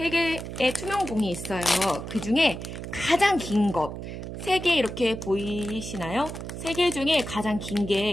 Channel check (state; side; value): noise; right; hum, 8 dB below the sound